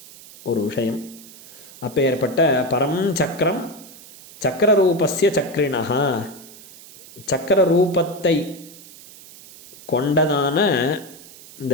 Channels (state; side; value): noise; right; hiss, 19 dB below the sound